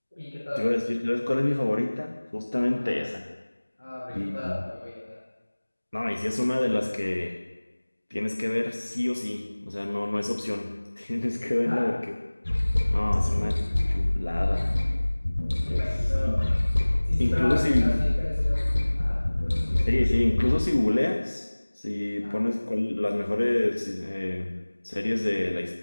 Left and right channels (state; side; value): inverted; both; correlation -1.00